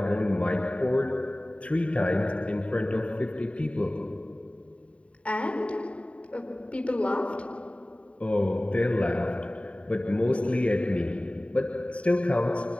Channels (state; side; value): late; right; 0.063 ms